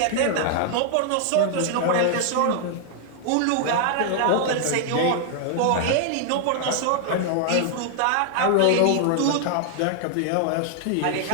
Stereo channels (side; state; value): both; different; correlation 0.00